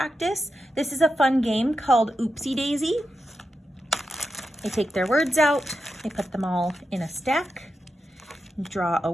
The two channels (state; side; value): normal; both; correlation 0.88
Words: This is a fun game called Oopsie Daisy. They take their words out, they put them all in a stack, draw a